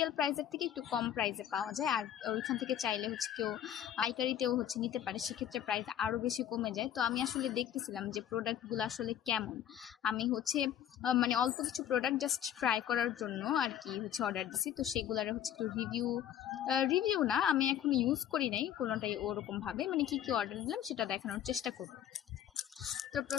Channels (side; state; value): right; quieter; 10.4 dB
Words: প্রাইসের থেকে একটু কম প্রাইসে পাওয়া যায়, আর ওইখান থেকে চাইলে হচ্ছে কেউ পাইকারিতেও হচ্ছে নিতে পারে, সেক্ষেত্রে প্রাইস আরও বেশি কমে যায়। তো আমি আসলে দেখতেছিলাম যে প্রোডাক্টগুলো আসলে কেমন। আমি হচ্ছে মানে অল্প কিছু প্রোডাক্ট জাস্ট ট্রাই করার জন্য আর কি হচ্ছে অর্ডার দিছি। তো সেগুলোর হচ্ছে একটু রিভিউ না, আমি এখন ইউজ করি নাই কোনোটাই ওরকমভাবে, মানে কি কি অর্ডার দিলাম সেটা দেখানোর চেষ্টা করবো। তো